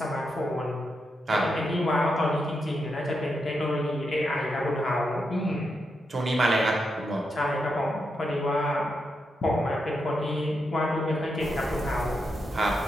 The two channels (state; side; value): normal; both; correlation 0.84